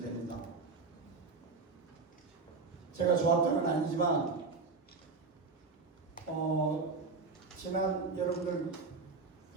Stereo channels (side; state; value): left; quieter; 4.2 dB